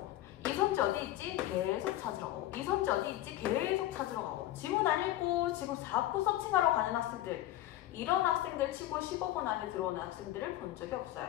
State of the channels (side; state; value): right; quieter; 14.5 dB